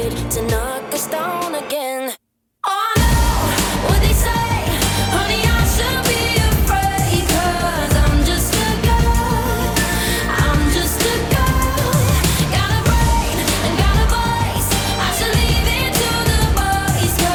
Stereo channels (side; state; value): both; identical; correlation 1.00